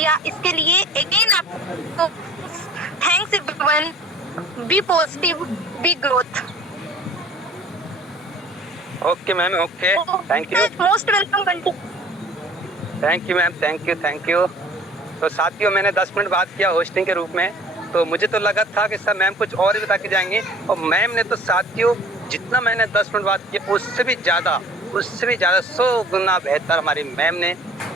इसके लिए अगेन आपको thanks everyone. Be positive, be growth. Okay ma'am, okay, thank you, most welcome. Thank you ma'am, thank you, thank you. तो साथियों, मैंने 10 मिनट बात किया होस्टिंग के रूप में, तो मुझे तो लगा था कि सर मैम कुछ और ही बता के जाएंगे, और मैम ने तो साथियों जितना मैंने 10 मिनट बात किया उससे भी ज़्यादा 100 गुना बेहतर हमारी मैम ने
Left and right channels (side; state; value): both; normal; correlation 0.49